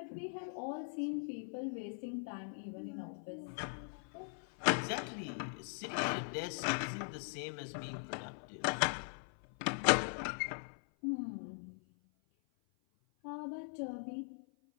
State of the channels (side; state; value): right; silent; 51 dB below the other